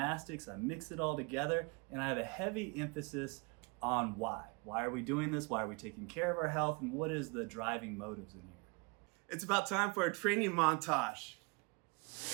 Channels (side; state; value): left; quieter; 30.3 dB